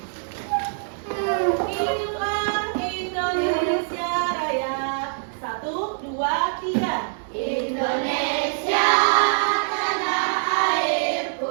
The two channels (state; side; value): silent; left; digital silence